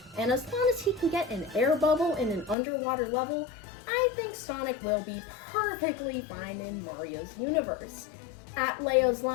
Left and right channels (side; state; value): right; drops out; at 2.6 s